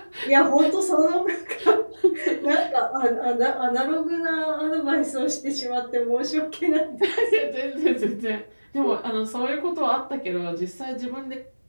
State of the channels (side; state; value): both; inverted; correlation -1.00